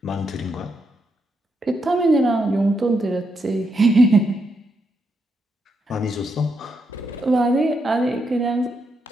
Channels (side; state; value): both; normal; correlation 0.81